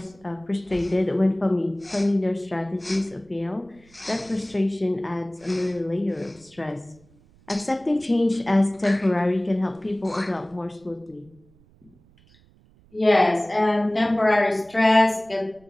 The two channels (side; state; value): right; noise; rumble, 29 dB below the sound